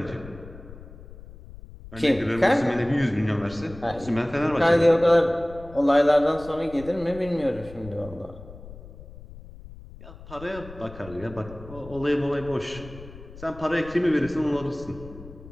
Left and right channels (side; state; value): left; noise; rumble, 17 dB below the sound